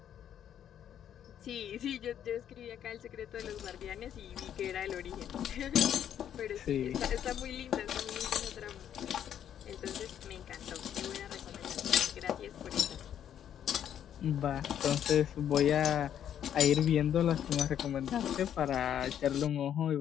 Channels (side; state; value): right; quieter; 9.8 dB